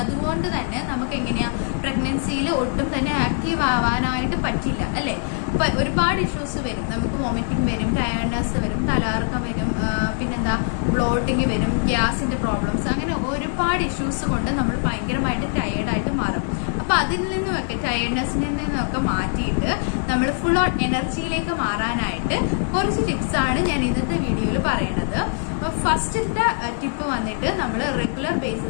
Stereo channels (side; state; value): right; silent; 64 dB below the other